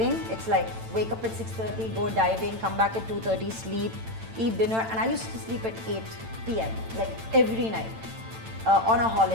it's like wake up at 6:30, go diving, come back at 2:30, sleep, eat dinner, and I used to sleep at 8 p.m. like every night. On a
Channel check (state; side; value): late; left; 8.9 ms